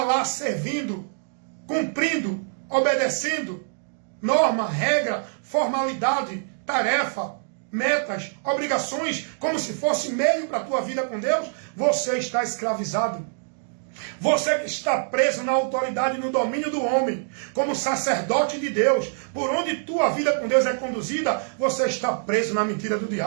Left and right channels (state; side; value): silent; left; digital silence